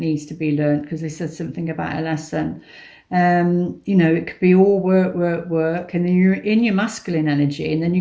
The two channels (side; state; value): both; identical; correlation 1.00